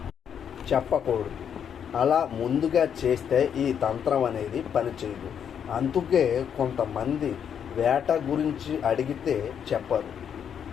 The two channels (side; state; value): right; quieter; 8.2 dB